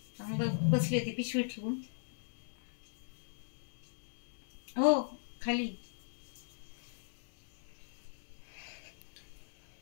बसली होती पिशवी ठेवून. हो खाली.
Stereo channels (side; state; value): right; silent; 52 dB below the other